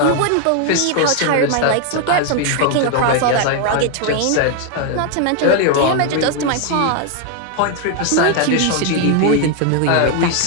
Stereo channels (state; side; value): different; both; correlation 0.00